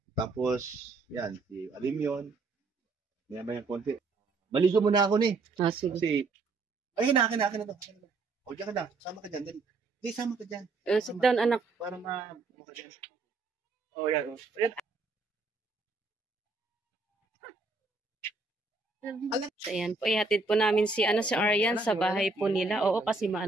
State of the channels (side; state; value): left; quieter; 3.7 dB